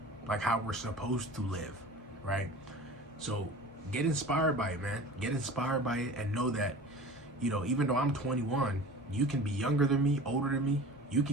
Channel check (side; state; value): both; normal; correlation 0.38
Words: like how we're supposed to live, right? So get inspired by it, man. Get inspired by it and know that, you know, even though I'm 21, you can be younger than me, older than me. You